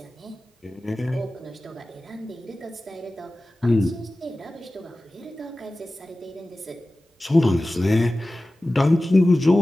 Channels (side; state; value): both; normal; correlation 0.96